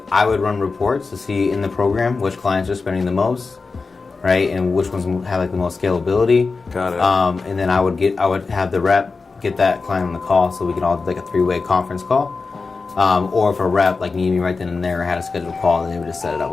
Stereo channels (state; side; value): quieter; right; 4.3 dB